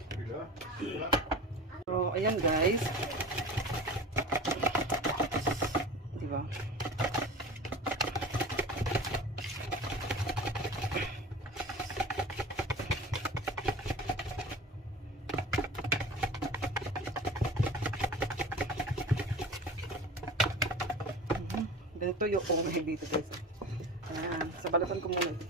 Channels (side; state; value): both; normal; correlation 0.36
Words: So, ayan guys. Diba? Ganito yung oven dito guys. Ayan. Sa balatan ko muna ito